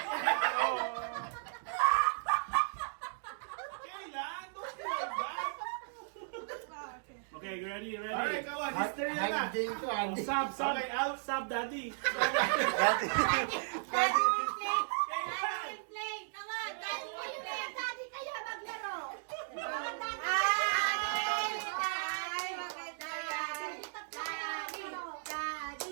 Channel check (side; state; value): left; silent; digital silence